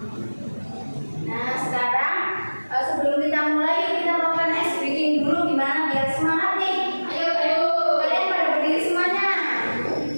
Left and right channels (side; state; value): both; inverted; correlation -1.00